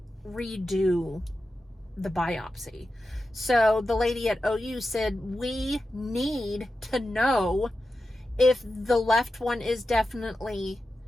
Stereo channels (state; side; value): normal; both; correlation 0.91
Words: redo the biopsy. So the lady at OU said, we need to know if the left one is definitely